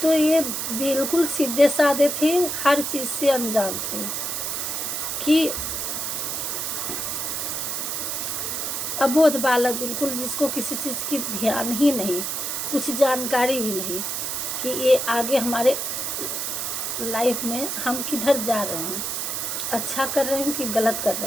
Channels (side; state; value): right; noise; hiss, 2 dB below the sound